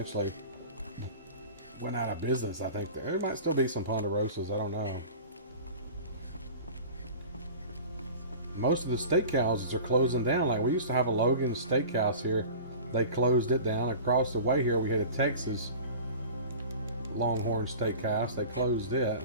went out of business, I think. There might still be some Ponderosas, I don't know. Most of the steakhouses are closing down. Like, we used to have a Logan's Steakhouse here. They closed it down. Across the way here, we had a Texas Longhorn Steakhouse. They closed it.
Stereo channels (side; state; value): both; inverted; correlation -0.39